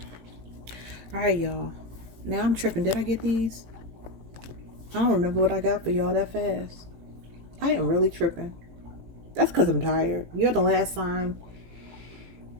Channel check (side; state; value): left; late; 18 ms